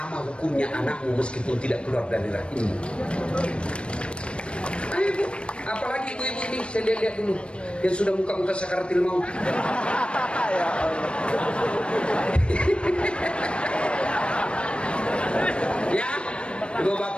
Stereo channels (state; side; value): late; right; 0.058 ms